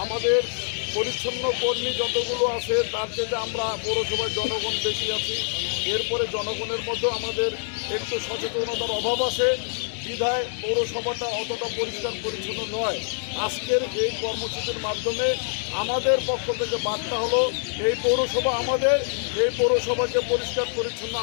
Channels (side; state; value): right; silent; digital silence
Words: আমাদের পরিচ্ছন্ন কর্মী যতগুলো আছে তার থেকে আমরা পৌরসভার জনগণ বেশি আছি। এরপরে জনগণের মধ্যে আমাদের একটু সচেতনতার অভাব আছে, বিধায় পৌরসভাটা অতটা পরিষ্কার পরিচ্ছন্ন নয়। আজকের এই কর্মসূচির মাধ্যমে আমাদের পক্ষ থেকে বার্তা হলো এই পৌরসভা আমাদের, এই পৌরসভাকে পরিষ্কার পরিচ্ছন্ন